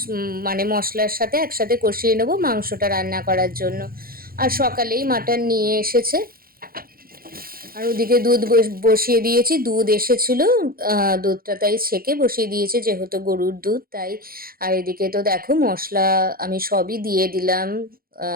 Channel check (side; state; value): left; late; 0.43 ms